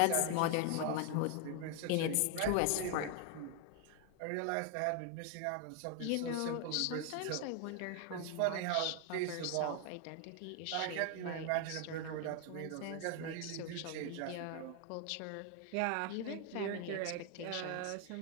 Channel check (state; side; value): different; both; correlation 0.01